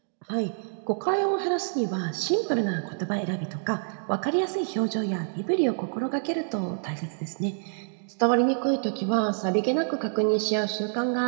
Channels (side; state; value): left; silent; digital silence